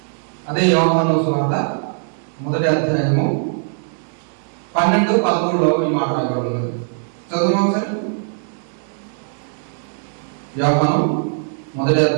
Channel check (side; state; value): left; silent; digital silence